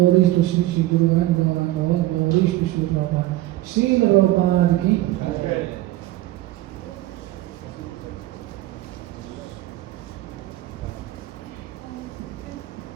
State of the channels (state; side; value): quieter; left; 16.3 dB